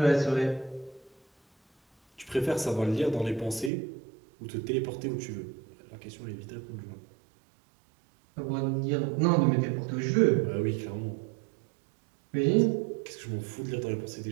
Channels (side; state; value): left; drops out; at 3.7 s